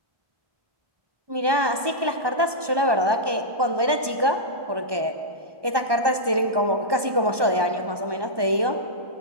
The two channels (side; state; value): left; late; 1.2 ms